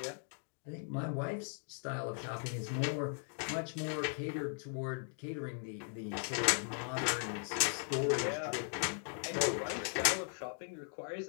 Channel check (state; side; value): silent; right; 52 dB below the other